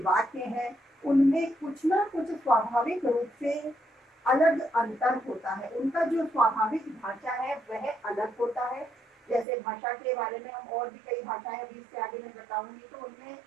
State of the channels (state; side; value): drops out; left; at 9.5 s